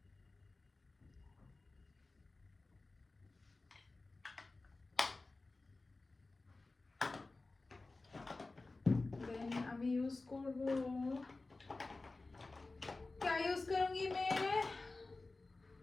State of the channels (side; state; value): right; quieter; 3.4 dB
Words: देन আমি ইউজ করব, क्या यूज करूंगी मैं,